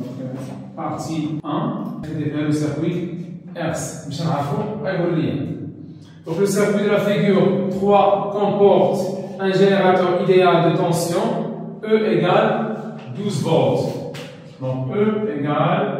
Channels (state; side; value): identical; both; correlation 1.00